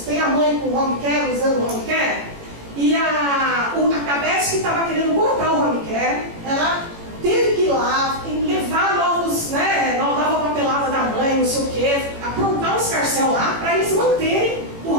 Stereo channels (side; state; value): left; late; 18 ms